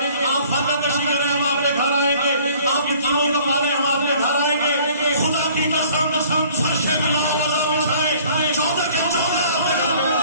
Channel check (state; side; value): inverted; both; correlation -0.54